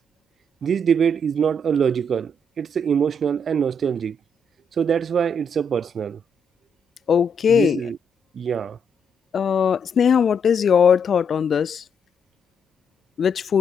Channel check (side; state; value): both; normal; correlation 0.75